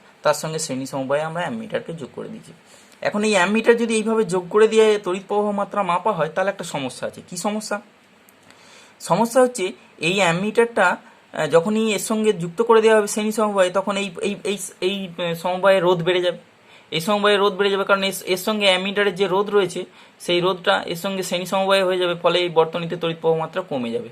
তার সঙ্গে শ্রেণী সমবায়ে আমরা অ্যামিটারকে যোগ করে দিয়েছি। এখন এই অ্যামিটার যদি এইভাবে যোগ করে দিয়ে তড়িৎ প্রবাহ মাত্রা মাপা হয়, তাহলে একটা সমস্যা আছে। কি সমস্যা? সমস্যা হচ্ছে এই অ্যামিটারটা যখনই এর সঙ্গে যুক্ত করে দেওয়া হবে শ্রেণী সমবায়ে, তখন এই এই এই এই সমবায়ে রোধ বেড়ে যাবে। এই সমবায়ে রোধ বেড়ে যাবে, কারণ এর সঙ্গে অ্যামিটারের যে রোধ রয়েছে, সেই রোধটা এর সঙ্গে শ্রেণী সমবায়ে হয়ে যাবে, ফলে এই বর্তনীতে তড়িৎ প্রবাহ মাত্রা কমে যাবে।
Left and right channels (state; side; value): identical; both; correlation 1.00